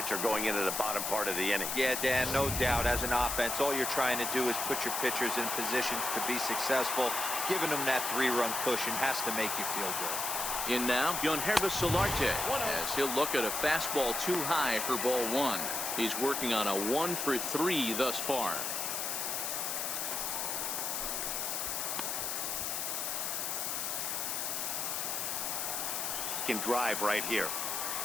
going into the bottom part of the inning. Yeah, Dan, no doubt. As an offense, all you're trying to do is put your pitchers in positions to be successful. Giving them that 3-run cushion has to make you feel good. In now, Yankees Solarte, as he'll look at a fastball too high for ball 1. He's working on a 1-for-3 thus far. Can drive right here.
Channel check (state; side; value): noise; left; hiss, 1 dB below the sound